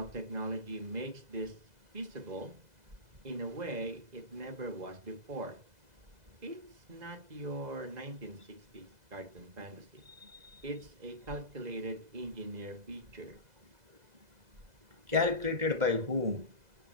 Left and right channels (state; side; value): late; left; 2.0 ms